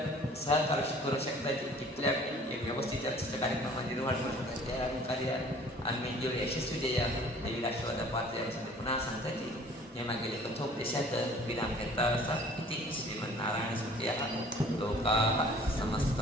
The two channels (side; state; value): both; normal; correlation 0.51